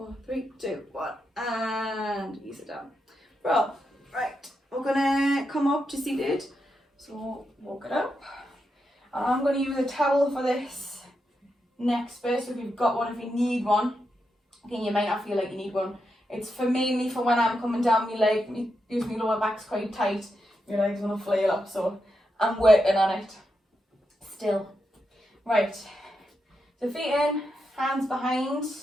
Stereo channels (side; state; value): both; normal; correlation 0.85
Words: 3, 2, 1, and ease it down. Well, right, we're gonna come up to seated. So walk it up. And I'm going to use a towel for this next bit. So if you've got one, if you need one, again, you might not feel like you need one. It's mainly for when I'm coming down my leg. Usually my lower back's quite tight. Your leg's going to flail up. So I'm working on it still. Right. So feet in, hands behind.